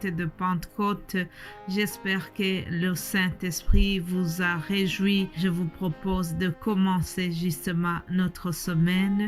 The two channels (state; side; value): identical; both; correlation 1.00